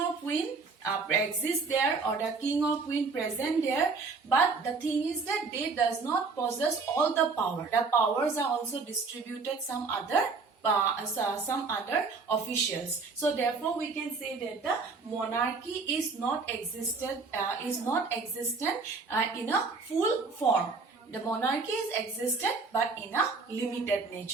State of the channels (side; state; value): left; quieter; 4.4 dB